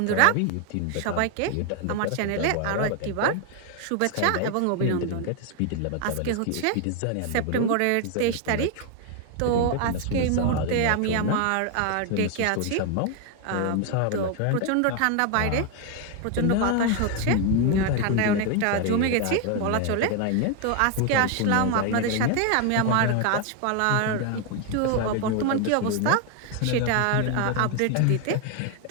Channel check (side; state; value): both; different; correlation 0.01